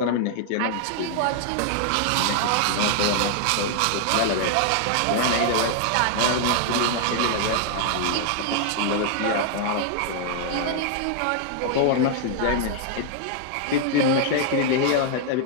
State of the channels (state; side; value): different; both; correlation 0.00